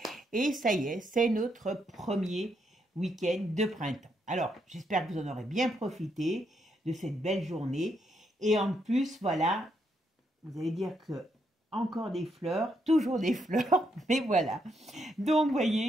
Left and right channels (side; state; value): both; normal; correlation 0.77